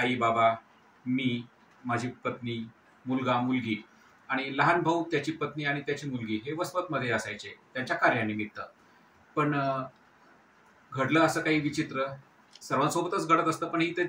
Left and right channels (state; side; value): identical; both; correlation 1.00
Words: बाबा, मी, माझी पत्नी, मुलगा मुलगी आणि लहान भाऊ, त्याची पत्नी आणि त्याची मुलगी हे वसमतमध्ये असायचे त्यांच्या कार्यानिमित्त। पण घडलं असं काही विचित्र, सर्वांसोबतच घडत असतं पण इथे